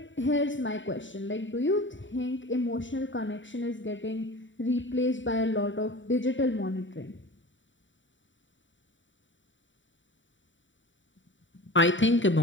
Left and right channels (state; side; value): late; right; 0.55 ms